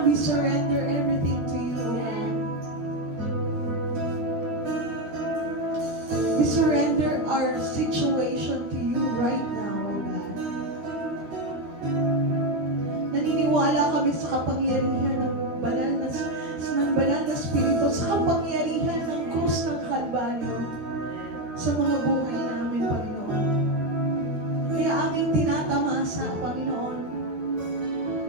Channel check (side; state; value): left; late; 13 ms